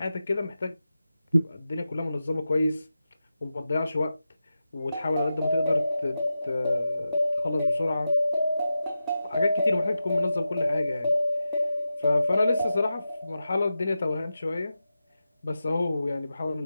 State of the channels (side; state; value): both; inverted; correlation -0.92